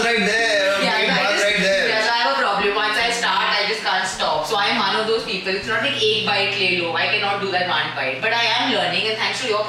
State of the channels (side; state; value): both; identical; correlation 1.00